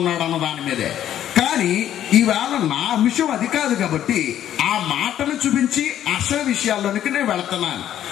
అన్న దాని మీదే. కానీ ఈవేళ నా అంశం అది కాదు కాబట్టి ఆ మాటను చూపించి అసలు విషయాల్లోనికి నేను వెళుతున్నాను.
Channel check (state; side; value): quieter; right; 11.1 dB